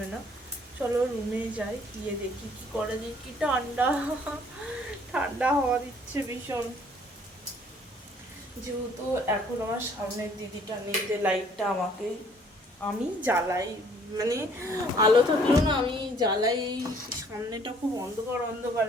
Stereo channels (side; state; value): both; normal; correlation 0.59